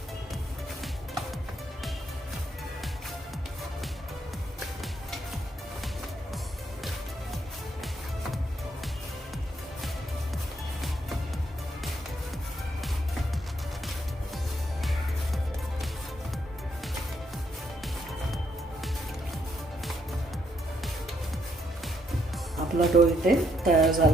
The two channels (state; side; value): normal; both; correlation 0.74